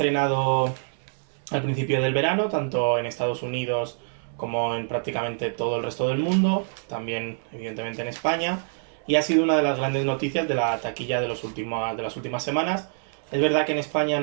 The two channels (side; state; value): left; silent; 61 dB below the other